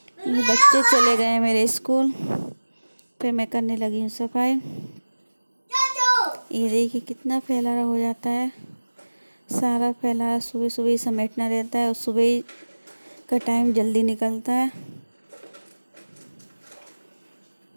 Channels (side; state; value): both; inverted; correlation -1.00